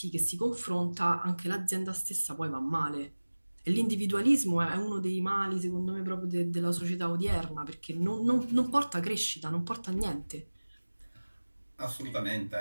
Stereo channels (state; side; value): inverted; both; correlation -1.00